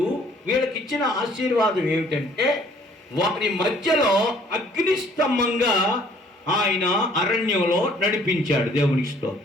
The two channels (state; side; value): normal; both; correlation 0.59